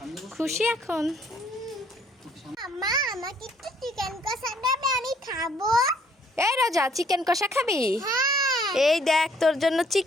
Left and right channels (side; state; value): both; normal; correlation 0.63